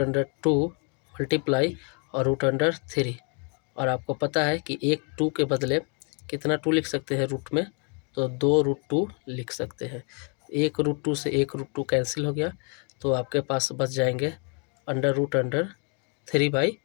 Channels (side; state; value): right; quieter; 37.2 dB